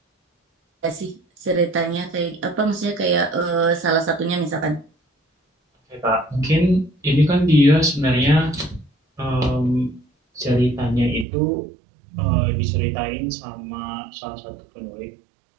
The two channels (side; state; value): left; drops out; at 11.2 s